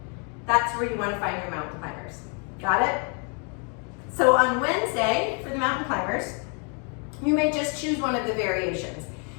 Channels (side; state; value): right; quieter; 38.0 dB